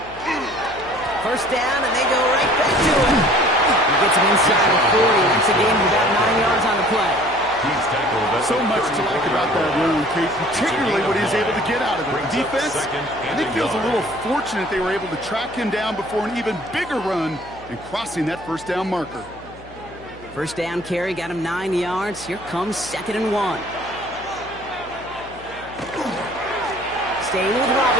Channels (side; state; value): left; noise; hum, 20 dB below the sound